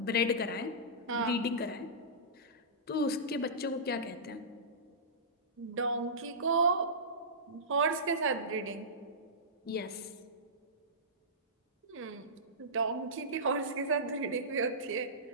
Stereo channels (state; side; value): normal; both; correlation -0.19